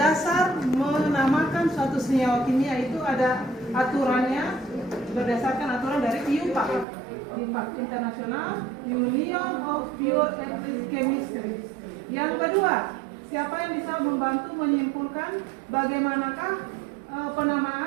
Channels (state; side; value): drops out; left; at 6.9 s